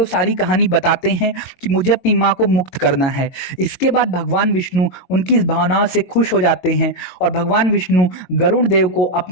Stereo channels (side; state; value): right; late; 22 ms